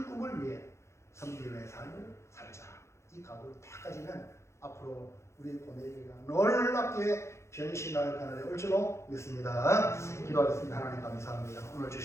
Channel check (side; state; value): right; late; 0.13 ms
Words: 꿈을 위해 섬김의 삶을 살자. 이 각오를 딱 가지면 앞으로 우리 고뇌교회가 놀랍게 변신할 그날에 올 줄로 믿습니다. 기도하겠습니다. 하나님 감사합니다. 오늘